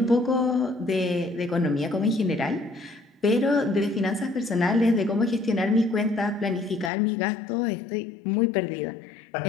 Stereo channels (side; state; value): right; drops out; at 6.9 s